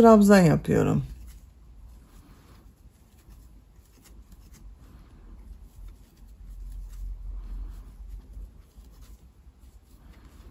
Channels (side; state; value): both; identical; correlation 1.00